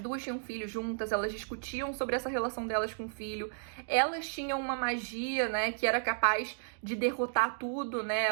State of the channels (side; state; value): left; silent; digital silence